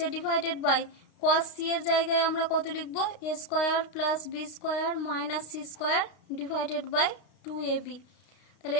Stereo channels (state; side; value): late; right; 32 ms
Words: ডিভাইডেড বাই কস সি এর জায়গায় আমরা কত লিখবো A square plus B square minus C square divided by 2ab। তাহলে